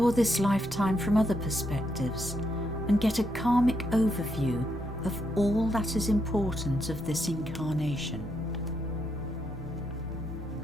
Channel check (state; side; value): normal; both; correlation 0.79